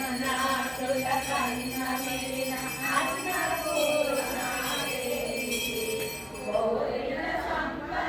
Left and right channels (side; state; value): both; identical; correlation 1.00